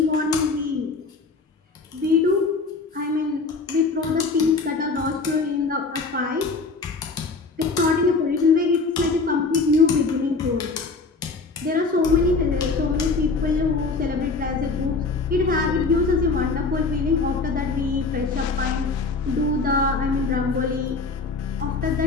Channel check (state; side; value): quieter; right; 4.0 dB